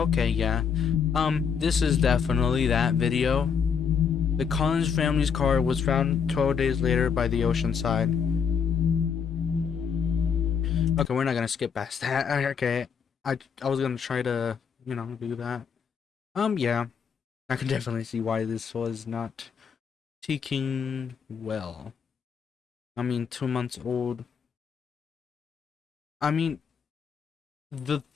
yeah. This is definitely that video. The Collins family's car was found 12 days later by the ocean side. Okay, we're not gonna skip past that. Okay. I was gonna try to, do that. Yeah. I can definitely see why this was not taking well. I mean, 2 months old. I mean, the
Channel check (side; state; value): right; quieter; 6.7 dB